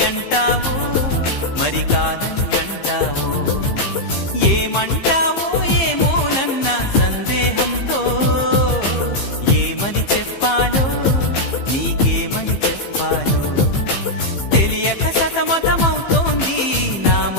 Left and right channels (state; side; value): late; right; 15 ms